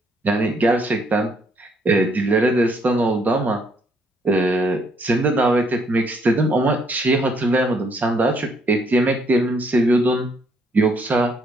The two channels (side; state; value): both; normal; correlation 0.69